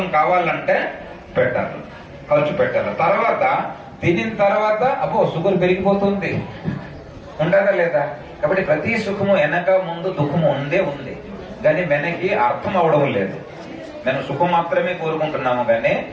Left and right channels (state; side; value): identical; both; correlation 1.00